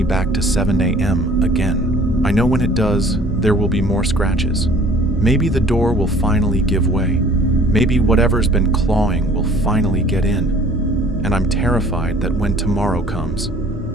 back to 7 a.m. again. I know when it does, there will be more scratches. Maybe the door will finally give way. Maybe whatever's been clawing will finally get in. And I'm terrified that when tomorrow comes,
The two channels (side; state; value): both; normal; correlation 0.52